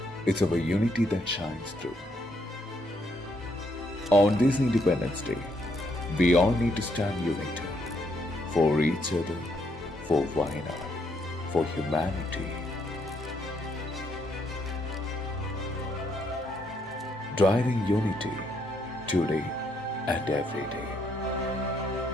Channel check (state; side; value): normal; both; correlation 0.74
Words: it's our unity that shines through. On this Independence Day, we all need to stand united for each other, for Wayanad, for humanity. Driving unity today and every day.